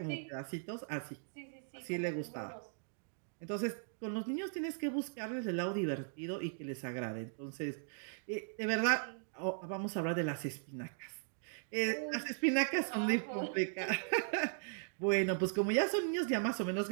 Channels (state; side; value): silent; left; digital silence